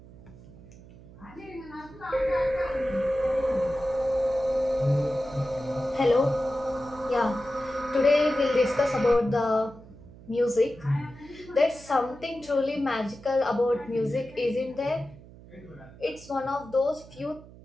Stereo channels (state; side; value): noise; right; hum, 20 dB below the sound